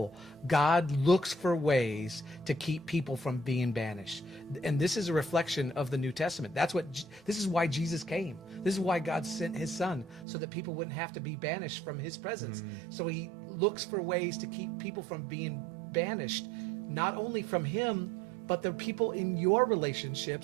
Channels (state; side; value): drops out; left; at 10.2 s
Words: God looks for ways to keep people from being banished. And this is a reflection of the New Testament. This is why Jesus came. This is why God sent his son, so that people wouldn't have to be banished from his presence. So he looks for ways to keep people from being banished, not only from him, but the people in your